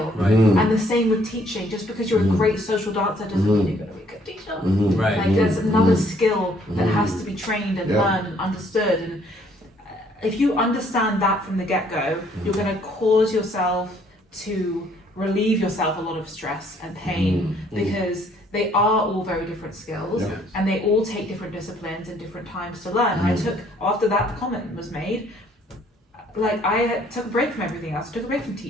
And the same with teaching. Just because you're a great social dancer doesn't mean you're going to be a good teacher. Like, there's another skill that has to be trained and learned and understood. And if you understand that from the get-go, you're going to cause yourself to relieve yourself a lot of stress and pain, because they are all very different skills, and they all take different disciplines and different times to learn. I took, after that comment was made, like, I took a break from everything else. I took a break from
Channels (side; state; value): both; normal; correlation 0.63